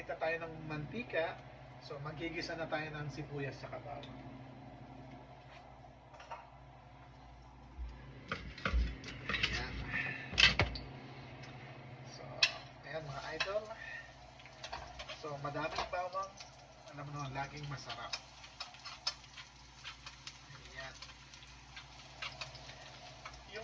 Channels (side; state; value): both; identical; correlation 1.00